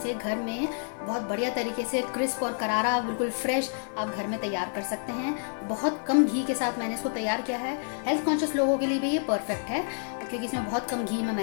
घर में बहुत बढ़िया तरीके से क्रिस्प और करारा बिल्कुल फ्रेश आप घर में तैयार कर सकते हैं। बहुत कम घी के साथ मैंने इसको तैयार किया है। हेल्थ कॉन्शियस लोगों के लिए भी ये परफेक्ट है क्योंकि इसमें बहुत कम घी में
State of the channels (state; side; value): silent; right; digital silence